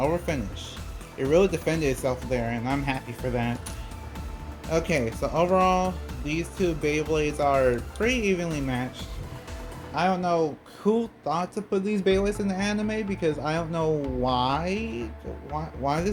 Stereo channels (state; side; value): identical; both; correlation 1.00